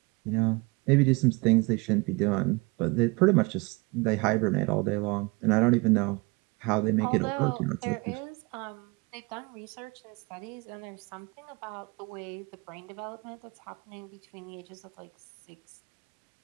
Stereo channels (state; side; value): quieter; left; 27.1 dB